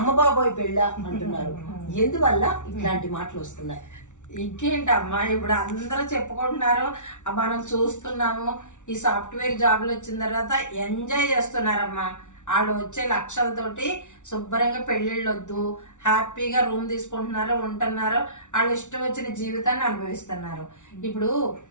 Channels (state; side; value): late; right; 0.86 ms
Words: బాబాయ్ పెళ్ళ అంటున్నారు. ఎందువల్ల ఇట్లాంటి మాటలు వస్తున్నాయి? ఇంకేంటమ్మా, ఇప్పుడు అందరూ చెప్పుకుంటున్నారు, మనం చూస్తున్నాము. ఈ సాఫ్ట్వేర్ జాబ్లు వచ్చిన తర్వాత ఎంజాయ్ చేస్తున్నారమ్మా. వాళ్ళు వచ్చే లక్షలతోటి శుభ్రంగా పెళ్ళిళ్ళు వద్దు, హ్యాపీగా రూమ్ తీసుకుంటున్నారు, ఉంటున్నారు, వాళ్ళు ఇష్టం వచ్చిన జీవితాన్ని అనుభవిస్తున్నారు. ఇప్పుడు